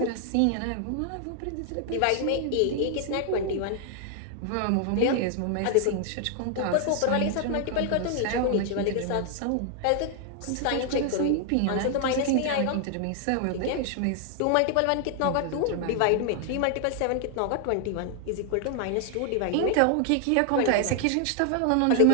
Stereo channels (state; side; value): different; both; correlation 0.00